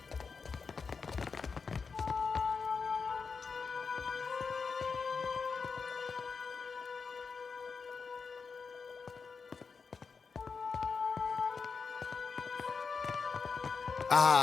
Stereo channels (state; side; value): quieter; right; 5.2 dB